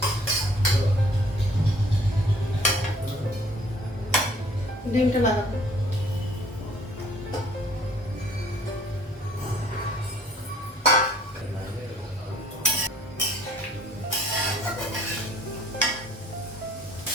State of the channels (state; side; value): normal; both; correlation 0.57